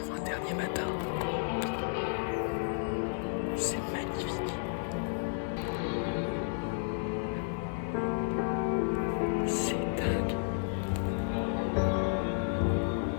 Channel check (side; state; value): right; silent; 56 dB below the other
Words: Dernier matin. C'est magnifique. C'est dingue.